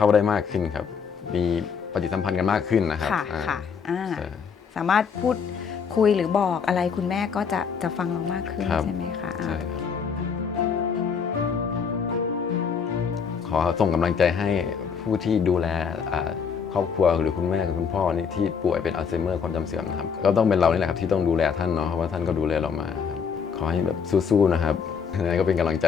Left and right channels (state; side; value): quieter; right; 6.3 dB